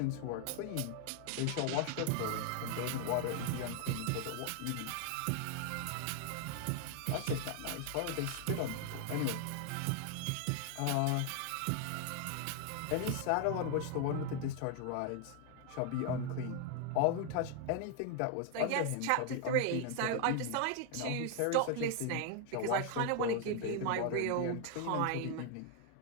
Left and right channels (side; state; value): both; different; correlation 0.00